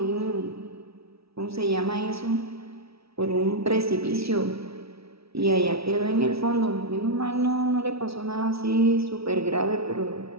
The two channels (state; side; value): late; left; 0.77 ms